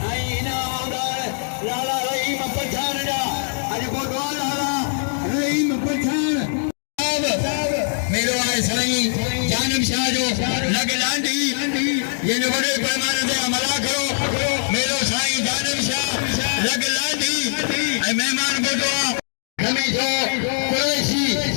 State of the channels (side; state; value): right; silent; digital silence